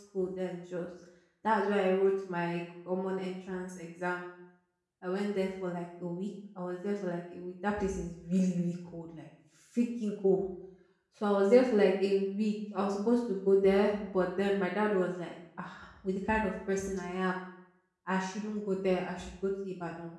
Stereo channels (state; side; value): identical; both; correlation 1.00